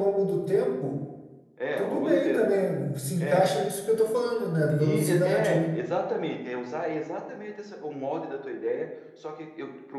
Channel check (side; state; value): both; identical; correlation 1.00